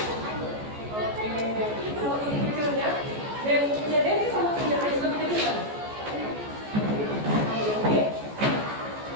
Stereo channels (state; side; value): late; left; 14 ms